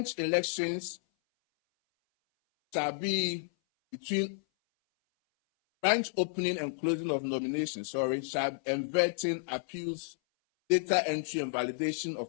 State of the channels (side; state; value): right; silent; 57 dB below the other